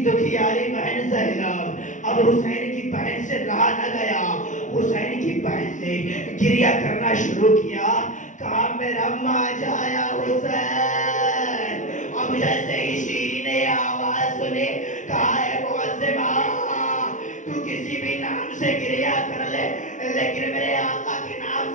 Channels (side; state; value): right; late; 0.36 ms